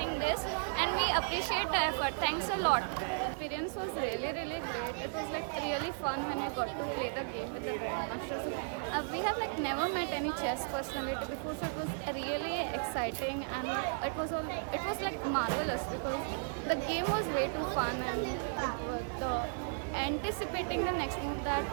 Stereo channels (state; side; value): silent; left; digital silence